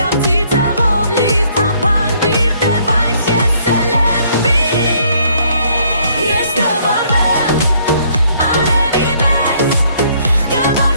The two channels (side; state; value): both; inverted; correlation -0.66